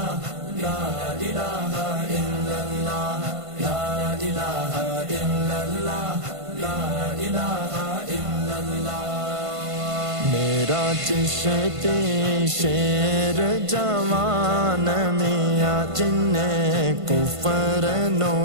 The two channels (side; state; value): left; late; 1.5 ms